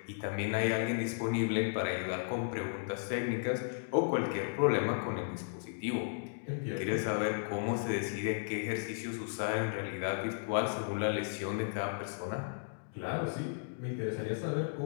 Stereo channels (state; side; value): silent; right; digital silence